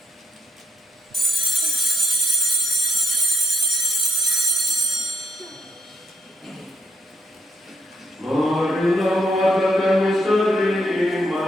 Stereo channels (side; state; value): both; normal; correlation 0.72